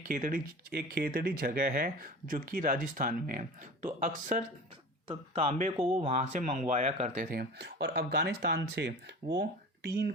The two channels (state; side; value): normal; both; correlation 0.36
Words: खेतड़ी जगह है जो कि राजस्थान में है। तो अक्सर तांबे को वो वहाँ से मंगवाया करते थे और अफ़गानिस्तान से वो टीन